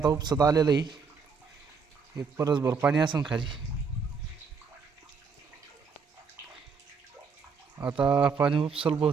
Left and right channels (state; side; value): quieter; left; 5.4 dB